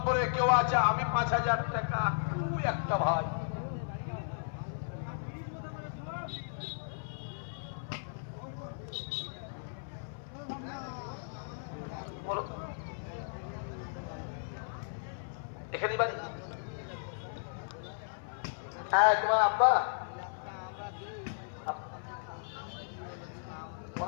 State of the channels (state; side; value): silent; right; 54 dB below the other